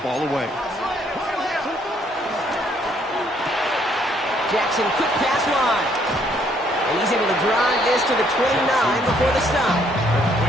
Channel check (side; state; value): both; normal; correlation 0.67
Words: ball away. Jackson, quick pass wide. And he's able to drive this to the 29 before the stop.